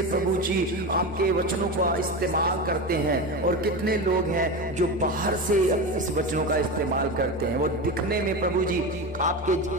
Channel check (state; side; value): normal; both; correlation 0.22